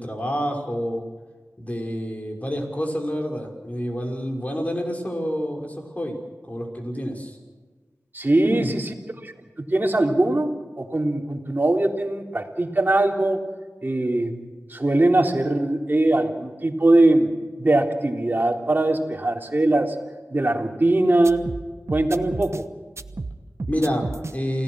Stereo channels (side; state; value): both; normal; correlation 0.95